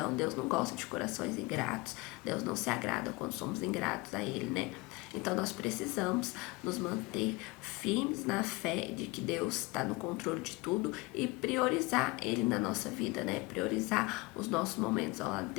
Deus não gosta de corações ingratos. Deus não se agrada quando somos ingratos a Ele, né? Então nós precisamos nos manter firmes na fé de que Deus está no controle de tudo e priorizar Ele na nossa vida, né? Priorizar os nossos momentos ao lado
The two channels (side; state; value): right; quieter; 23.0 dB